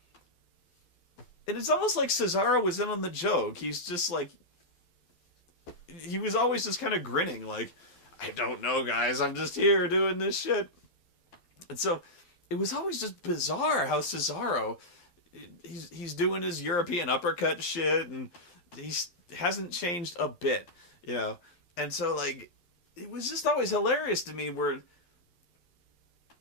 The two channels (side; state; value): right; late; 12 ms